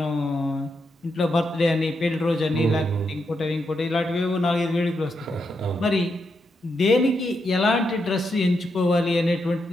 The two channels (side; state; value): both; normal; correlation 0.83